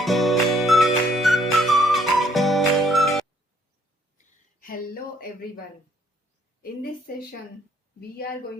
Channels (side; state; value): both; normal; correlation 0.66